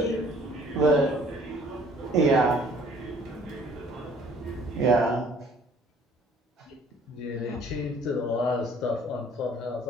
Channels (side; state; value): both; normal; correlation 0.56